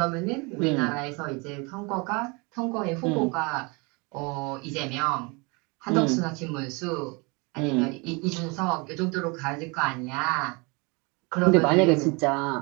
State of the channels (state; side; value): quieter; left; 28.8 dB